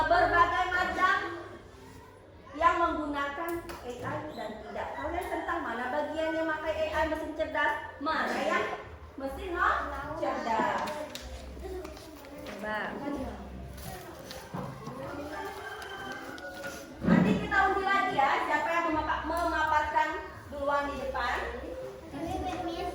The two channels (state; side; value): identical; both; correlation 1.00